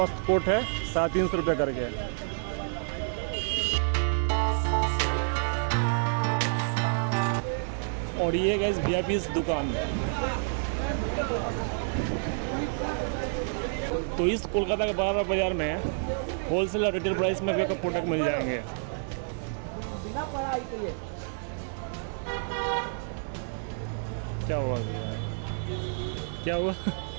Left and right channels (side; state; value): left; silent; 59 dB below the other